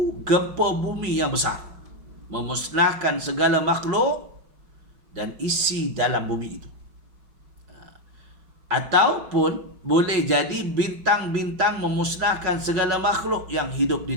gempa bumi yang besar, memusnahkan segala makhluk dan isi dalam bumi itu. Ataupun boleh jadi bintang-bintang memusnahkan segala makhluk yang hidup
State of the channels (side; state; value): left; late; 5.4 ms